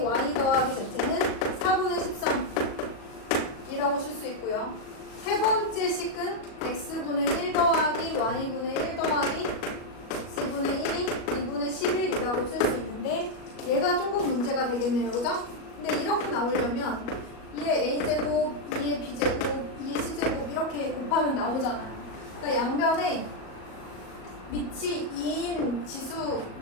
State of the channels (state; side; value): late; right; 37 ms